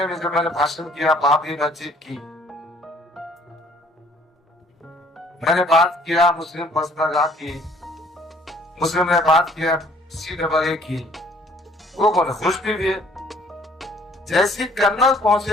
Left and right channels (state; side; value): normal; both; correlation 0.58